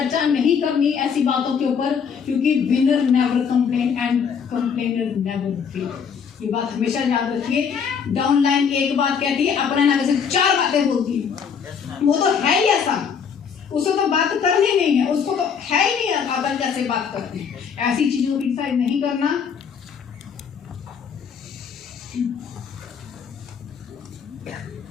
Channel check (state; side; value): quieter; right; 6.8 dB